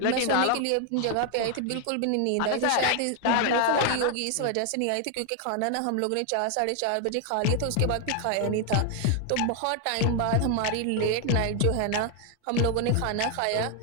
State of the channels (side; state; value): both; different; correlation 0.01